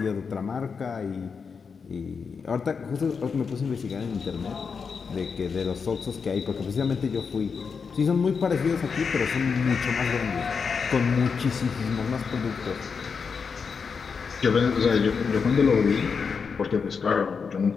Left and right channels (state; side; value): quieter; right; 5.7 dB